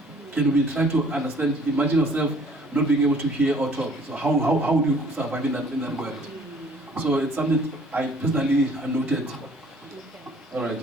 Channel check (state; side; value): normal; both; correlation 0.56